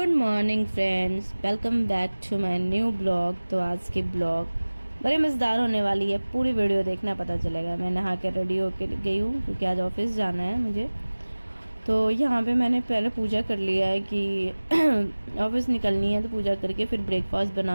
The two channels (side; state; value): both; inverted; correlation -1.00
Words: morning friends, welcome back to my new blog. तो आज की ब्लॉग बड़ी मज़ेदार होने वाली है, पूरी वीडियो देखना, पता चलेगा। मैं नहा के रेडी होके गई हूँ क्योंकि आज ऑफिस जाना है मुझे। तो यहाँ पे मैंने पहले पूजा कर लिया है कि ऑफिस निकलनी है, तो पूजा करके फिर ब्रेकफास्ट